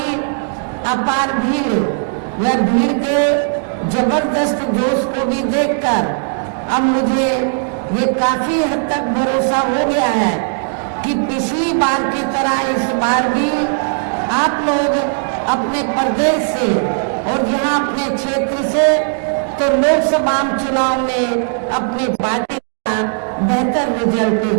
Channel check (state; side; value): silent; left; digital silence